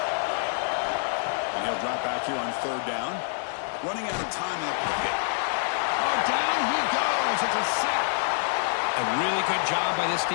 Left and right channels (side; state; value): right; silent; digital silence